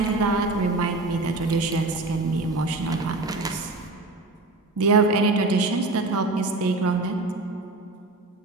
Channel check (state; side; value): quieter; left; 3.1 dB